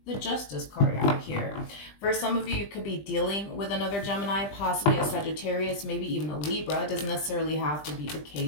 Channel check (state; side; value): late; right; 20 ms